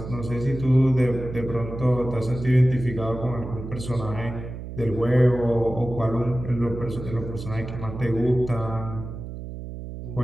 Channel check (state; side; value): noise; right; hum, 9 dB below the sound